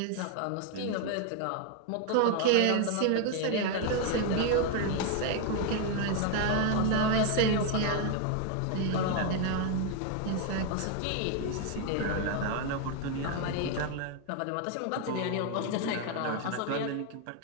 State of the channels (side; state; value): both; different; correlation 0.01